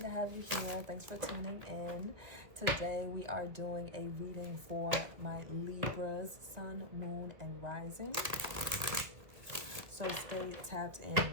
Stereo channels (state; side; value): late; left; 2.1 ms